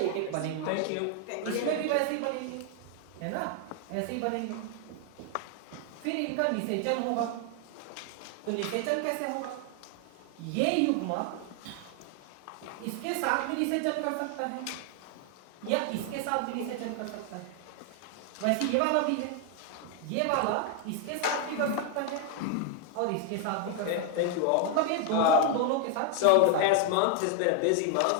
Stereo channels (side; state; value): both; different; correlation 0.00